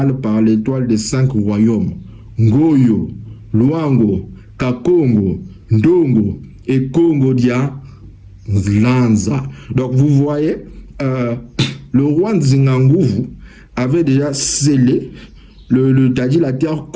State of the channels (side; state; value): both; identical; correlation 1.00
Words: par l'étoile des 5 royaumes. Ngoyo, Luango, Kakongo, Ndongo et Congo Dia Lanza. Donc vous voyez, le roi Nzinganguvu avait déjà scellé la terre